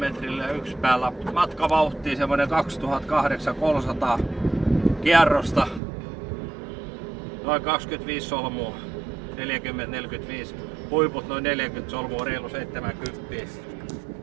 yksi päällä. Matkavauhtia semmonen 2800 kierrosta. Noin 25 solmua. 40-45. Huiput noin 40 solmua, reilu 70.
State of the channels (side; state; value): left; drops out; at 5.8 s